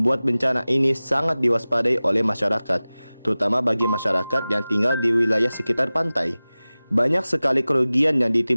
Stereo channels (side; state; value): both; inverted; correlation -0.98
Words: bencana ini sangat diwaspadai oleh masyarakat, terutama bagi masyarakat yang tinggal di wilayah sekitar pantai. Banyak sekali kerugian yang